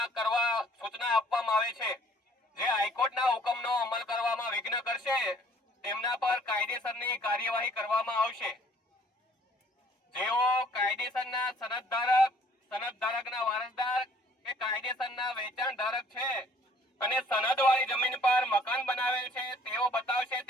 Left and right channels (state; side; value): normal; both; correlation 0.58